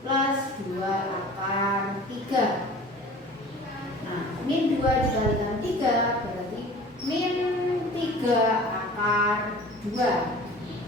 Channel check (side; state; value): both; normal; correlation 0.42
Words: plus 2 akar 3. Nah, min 2 dikalikan 3 berarti min 3 akar